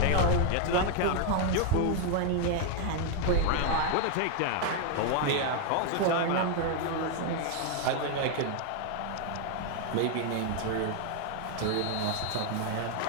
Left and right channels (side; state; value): both; different; correlation 0.00